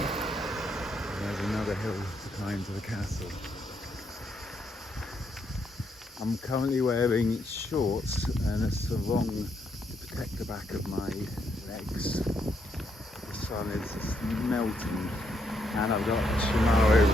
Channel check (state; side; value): normal; both; correlation 0.76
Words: there's another hill to climb to the castle. I'm currently wearing shorts and a sarong to protect the back of my legs. The sun is just melting, and I've got Himare